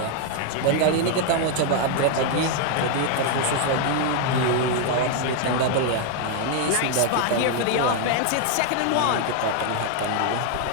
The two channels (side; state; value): both; different; correlation 0.00